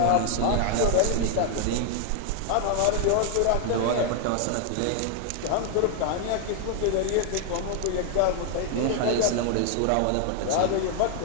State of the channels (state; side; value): different; both; correlation 0.00